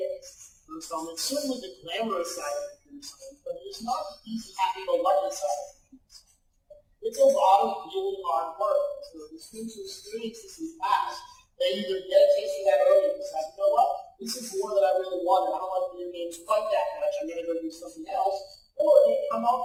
So it's certainly the glamorous side of computer science, but it's not the easy, happy-go-lucky side of computer science. It's a lot of really hard work. So the students who experience this in class, they either get a taste of that early and decide, you know what, this is more than I really wanted. I don't like video games quite that much. I'm going to go do something else. Or they come out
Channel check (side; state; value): both; identical; correlation 1.00